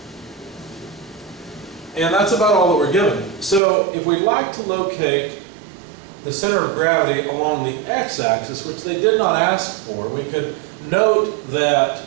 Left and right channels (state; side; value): drops out; left; at 3.6 s